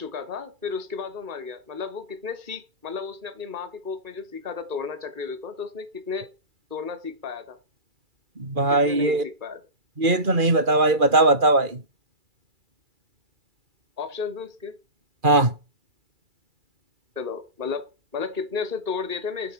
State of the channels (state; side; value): late; left; 2.4 ms